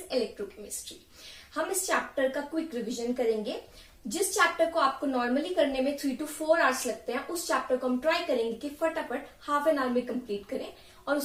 electrochemistry. हम इस chapter का quick revision करेंगे. जिस chapter को आपको normally करने में 3 to 4 hours लगते हैं, उस चैप्टर को हम ट्राई करेंगे कि फटाफट हाफ एन आवर में कंप्लीट करें और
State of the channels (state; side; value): identical; both; correlation 1.00